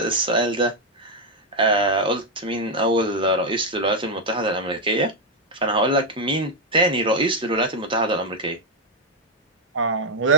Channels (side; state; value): both; normal; correlation 0.02